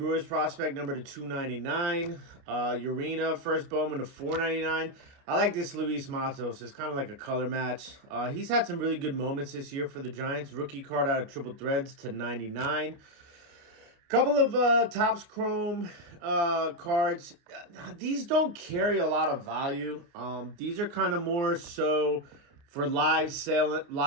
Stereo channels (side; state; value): left; late; 29 ms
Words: prospect, number to 299. Urena, first Bowman to 499. I like this Luis Matos. It's kind of like a color match. He's had some really good moments this year for the Giants. Rookie card out of Triple Threads to 99. Couple of Topps Chrome cards. These don't carry a lot of value. These are kind of more so for live